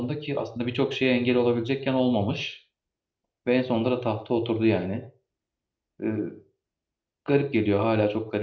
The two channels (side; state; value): both; identical; correlation 1.00